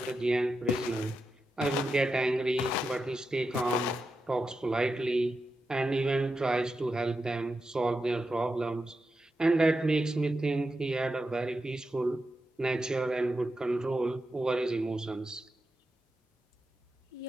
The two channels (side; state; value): both; normal; correlation 0.88